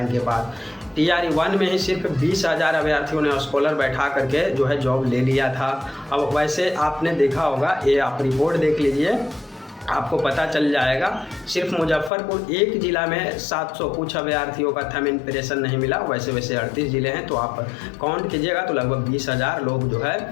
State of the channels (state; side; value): drops out; right; at 12.1 s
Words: इनके पास। TRE 1 में ही सिर्फ 20,000 अभ्यर्थियों ने स्कॉलर बैठा करके जो है जॉब ले लिया था। अब वैसे आपने देखा होगा, ये आप रिपोर्ट देख लीजिए, आपको पता चल जाएगा। सिर्फ मुजफ्फरपुर एक ज़िला में 700 कुछ अभ्यर्थियों का थंब इम्प्रेशन नहीं मिला, वैसे 38 ज़िले हैं, तो आप काउंट कीजिएगा तो लगभग 20,000 लोग जो है